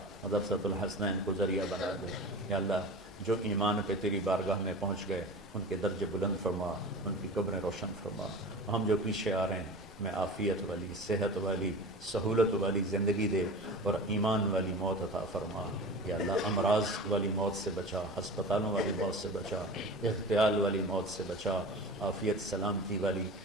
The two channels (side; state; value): both; normal; correlation 0.34